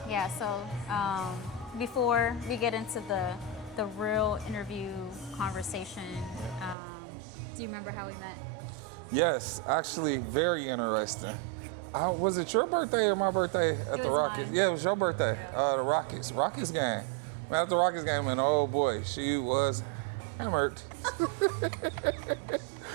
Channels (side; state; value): left; drops out; at 6.8 s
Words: Yeah. So before we get into the real interview conversation, do you remember how we met? Yes, actually, very interesting. Was it your birthday or my birthday at It the was Rockets? mine. Yeah, it was your birthday. Yeah. The Rockets game. Man, after the Rockets game, and oh boy, she was hammered.